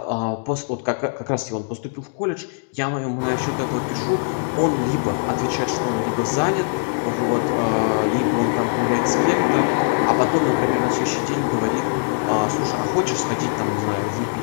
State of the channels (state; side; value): silent; right; digital silence